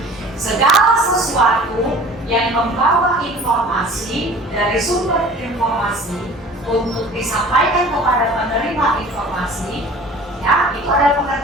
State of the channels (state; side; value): normal; both; correlation 0.45